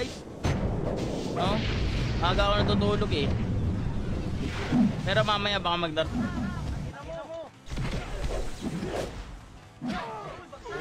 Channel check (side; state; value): both; identical; correlation 1.00